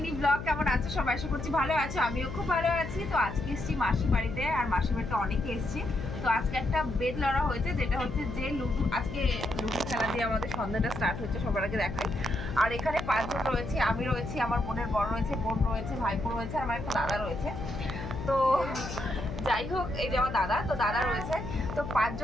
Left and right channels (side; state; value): left; noise; hum, 8 dB below the sound